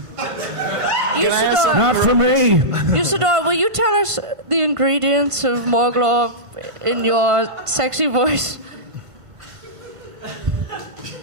Usidore. Not for me. Usidore, will you tell us the ingredients of Morglorp in your sexy voice?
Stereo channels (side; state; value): left; late; 1.5 ms